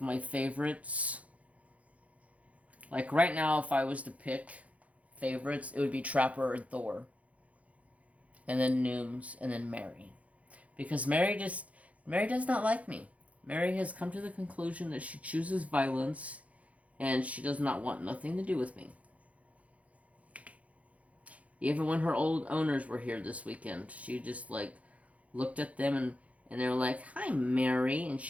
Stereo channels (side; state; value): left; late; 0.067 ms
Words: my favorites. Like right now, if I was to pick favorites, it would be Trapper and Thor. And then Nooms, and then Mary. Because Mary does not like me. Mary has come to the conclusion that she chooses violence, and she does not want nothing to do with me. Even when her old owners were here this weekend, she just like looked at them and they were like, "Hi, Mary," and